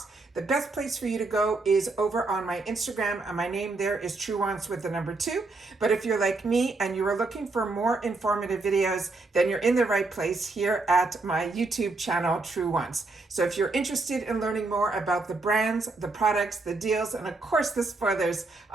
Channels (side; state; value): left; quieter; 3.5 dB